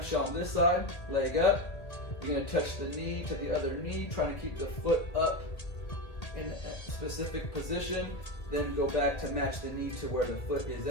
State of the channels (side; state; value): right; late; 1.8 ms